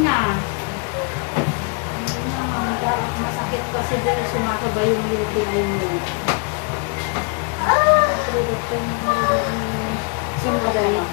Masakit kasi dahil sumasabay yung lutiin mo. Sumasabay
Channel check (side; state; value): right; quieter; 34.0 dB